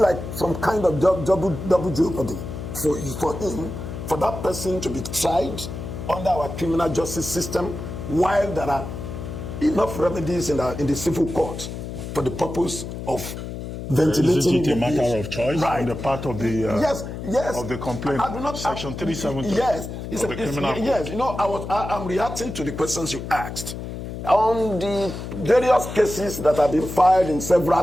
some kind of double jeopardy for that person to be tried under our criminal justice system, while there are enough remedies in the civil court for the purpose of ventilating. Is it a matter of choice on the part of the of the complaint? Section 370 of the criminal code. Yes, I'm reacting to the questions you asked on the various cases that have been filed in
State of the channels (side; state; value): left; noise; hum, 8 dB below the sound